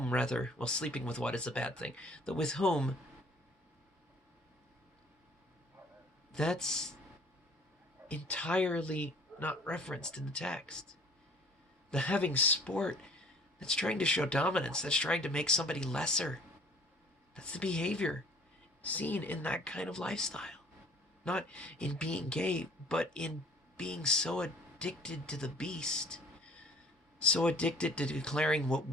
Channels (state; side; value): normal; both; correlation 0.53